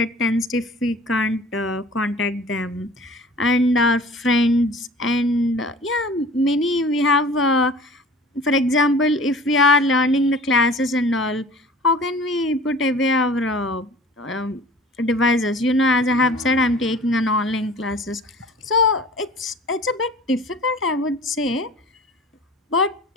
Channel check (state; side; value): normal; both; correlation 0.45